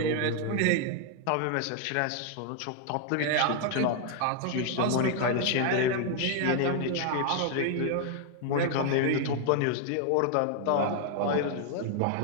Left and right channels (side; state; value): both; different; correlation 0.00